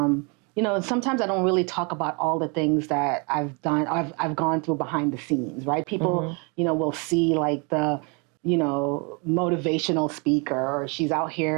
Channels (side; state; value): left; quieter; 32.8 dB